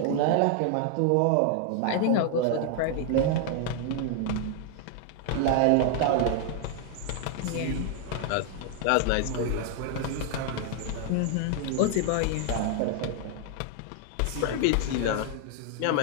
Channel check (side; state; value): both; different; correlation 0.00